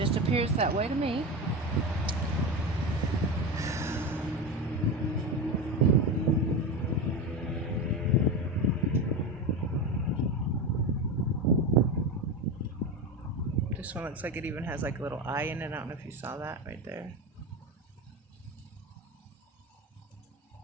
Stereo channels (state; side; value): normal; both; correlation 0.20